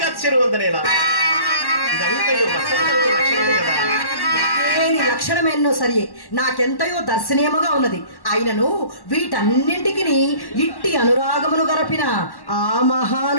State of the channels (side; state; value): right; late; 1.1 ms